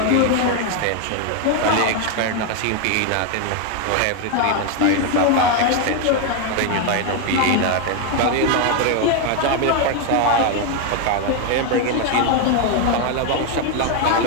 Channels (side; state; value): both; different; correlation 0.01